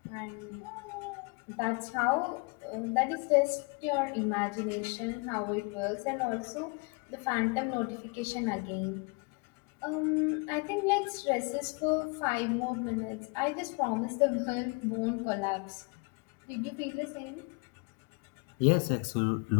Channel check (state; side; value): quieter; right; 31.5 dB